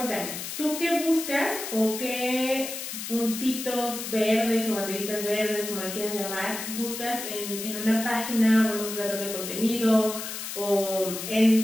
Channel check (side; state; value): left; noise; hiss, 7 dB below the sound